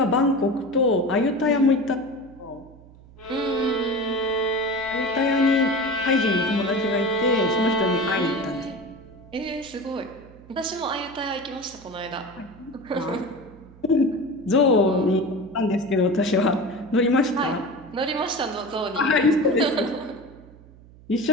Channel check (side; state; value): right; noise; hum, 23 dB below the sound